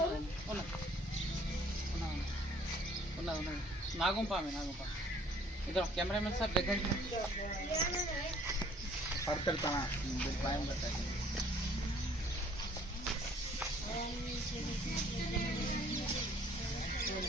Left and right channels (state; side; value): normal; both; correlation 0.58